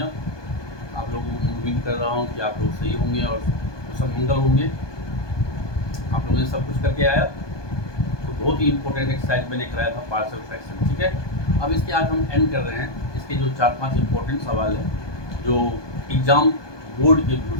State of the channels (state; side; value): late; right; 1.2 ms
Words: आप लोगों को उम्मीद कर रहा हूँ कि आप लोग सही होंगे और सब मंगल होंगे। आप लोगों ने सब कुछ करके आया तो बहुत ही इंपॉर्टेंट एक्सरसाइज मैंने कराया था, पार्शियल फ्रैक्शन। ठीक है, अब इसके आज हम एंड कर रहे हैं। इसके जो 4-5 इंपॉर्टेंट सवाल हैं जो एग्ज़ाम बोर्ड के व्यू